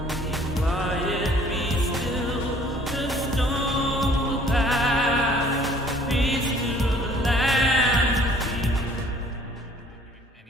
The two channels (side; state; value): both; normal; correlation 0.56